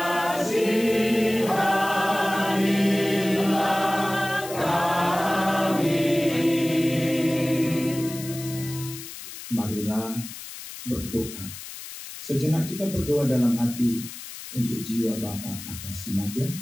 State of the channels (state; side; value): noise; left; hiss, 12 dB below the sound